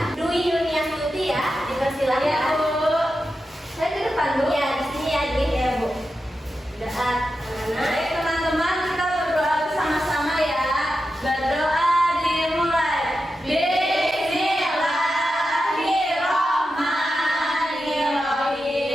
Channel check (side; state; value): both; normal; correlation 0.90